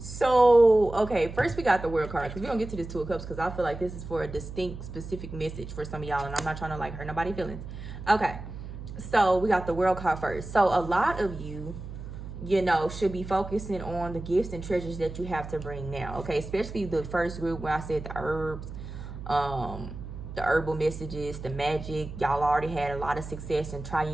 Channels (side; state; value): right; noise; hum, 10 dB below the sound